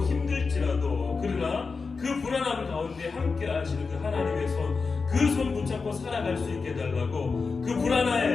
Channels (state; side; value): quieter; right; 4.6 dB